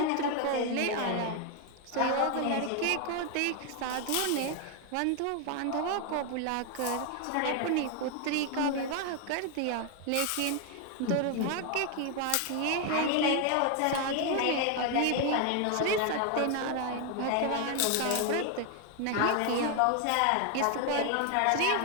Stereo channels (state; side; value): different; both; correlation 0.01